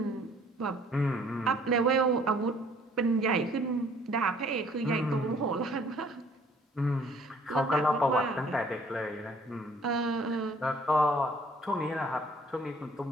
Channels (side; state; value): both; normal; correlation 0.58